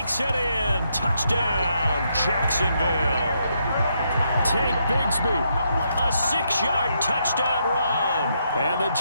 it in. Touchdown, Jacksonville. Tank Bigsby. A 6-yard touchdown run. And the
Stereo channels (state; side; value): inverted; both; correlation -0.77